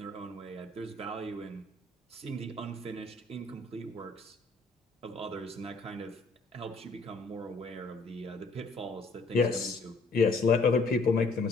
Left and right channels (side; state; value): right; quieter; 3.4 dB